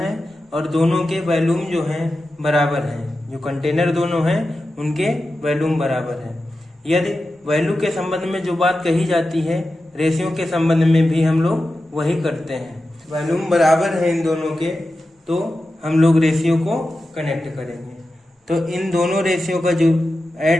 और दोनों के वॉल्यूम जो है बराबर हैं। जो कंटेनर दोनों हैं उनके वॉल्यूम बराबर है। यदि वैल्यू के संबंध में जो बात कही जाती है, रेशियो के संबंध में भी हम लोग वही करते हैं। वॉल्यूम बराबर है इन दोनों के तो हम लोग रेशियो को कनेक्ट करेंगे। तो इन दोनों रेशियो का जो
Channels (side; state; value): both; normal; correlation 0.92